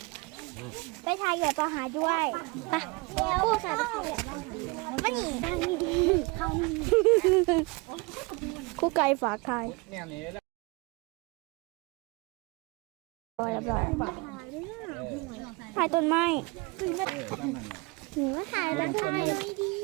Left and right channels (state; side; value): quieter; left; 27.1 dB